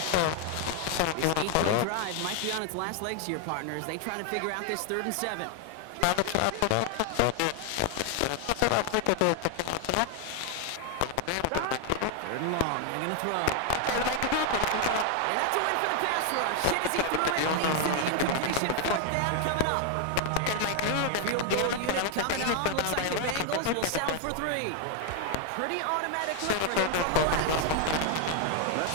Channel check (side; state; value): both; different; correlation 0.00